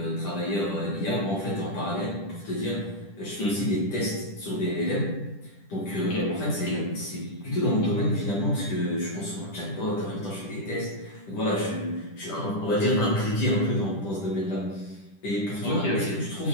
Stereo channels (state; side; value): late; right; 10 ms